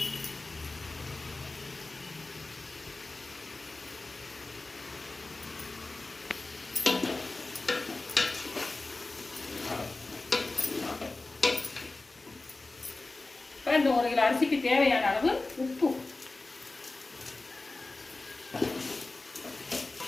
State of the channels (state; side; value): quieter; right; 3.3 dB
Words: இந்த 1 கிலோ அரிசிக்கு தேவையான அளவு உப்பு.